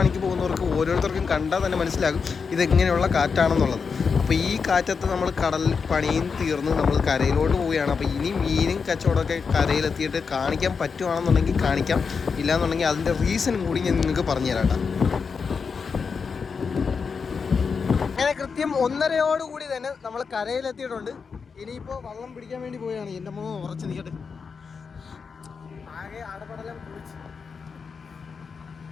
പോകുന്നവർക്ക് ഓരോരുത്തർക്കും കണ്ടാൽ തന്നെ മനസ്സിലാകും ഇതെങ്ങനെയുള്ള കാറ്റാണെന്നുള്ളത്. അപ്പോൾ ഈ കാറ്റത്ത് നമ്മൾ കടലിൽ പണിയും തീർന്ന് നമ്മൾ കരയിലോട്ട് പോവുകയാണ്. അപ്പോൾ ഇനി മീനും കച്ചവടമൊക്കെ കരയിലെത്തിയിട്ട് കാണിക്കാൻ പറ്റുവാണെന്നുണ്ടെങ്കിൽ കാണിക്കാം, ഇല്ലയെന്നുണ്ടെങ്കിൽ അതിൻ്റെ റീസണും കൂടി ഞാൻ നിങ്ങൾക്ക് പറഞ്ഞു തരാം. അങ്ങനെ കൃത്യം 1:30 തന്നെ നമ്മൾ കരയിലെത്തിയിട്ടുണ്ട്. ഇനിയിപ്പോൾ വള്ളം പിടിക്കാൻ വേണ്ടി പോവുകയാണ്. എൻ്റെ അമ്മ ഉറച്ച് നിൽക്കട്ടെ. ആകെ അടപടലം കുളിച്ച്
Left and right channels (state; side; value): quieter; right; 5.5 dB